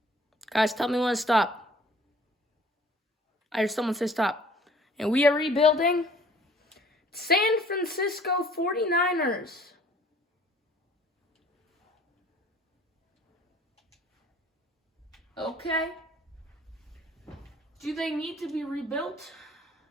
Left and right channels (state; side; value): normal; both; correlation 0.54